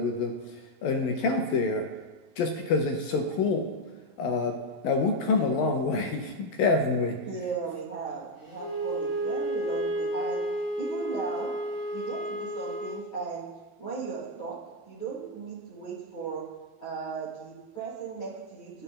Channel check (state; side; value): late; right; 11 ms